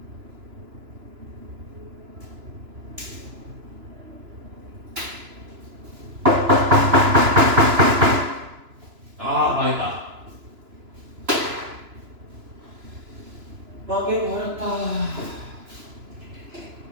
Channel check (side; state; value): left; late; 3.0 ms